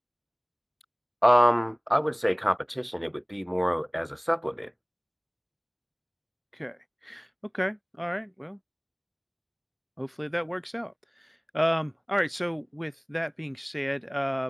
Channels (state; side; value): identical; both; correlation 1.00